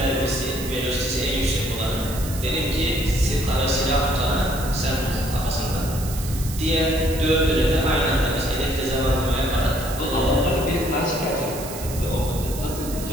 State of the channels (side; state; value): right; noise; hiss, 11 dB below the sound